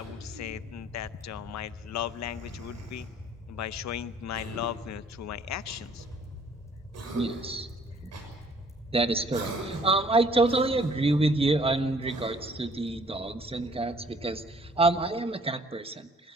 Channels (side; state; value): both; normal; correlation 0.58